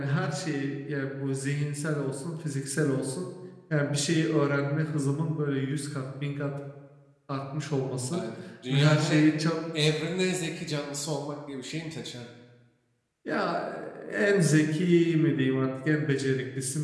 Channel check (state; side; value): identical; both; correlation 1.00